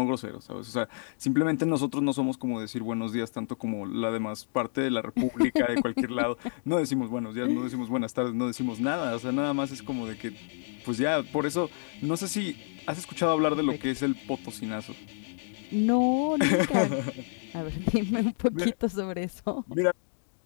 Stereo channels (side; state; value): right; silent; digital silence